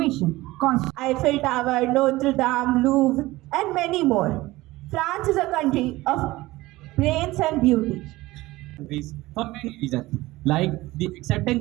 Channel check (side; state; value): left; quieter; 18.8 dB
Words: Eiffel Tower, Notre Dame, Louvre, and many more. France is a country of brains and beauty. Countries for many reasons, like the